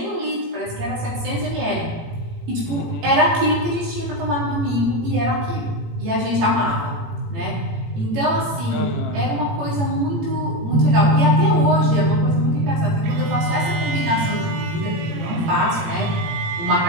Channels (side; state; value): left; late; 18 ms